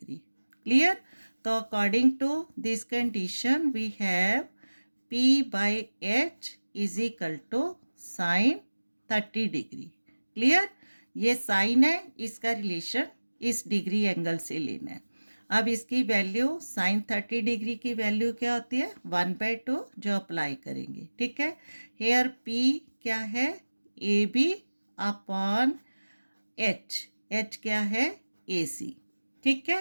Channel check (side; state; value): both; inverted; correlation -1.00